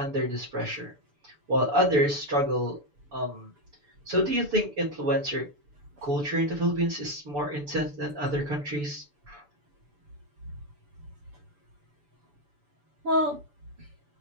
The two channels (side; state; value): left; late; 6.9 ms